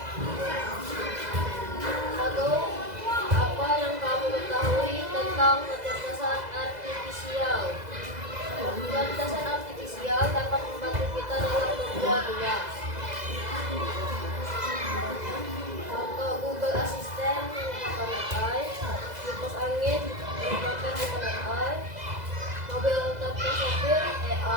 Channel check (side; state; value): left; late; 2.0 ms